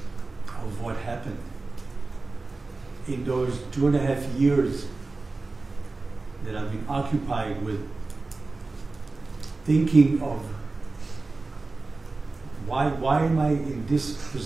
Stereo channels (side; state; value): left; quieter; 3.5 dB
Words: of what happened. In those 2.5 years that I've been occupied with thinking of why am I in this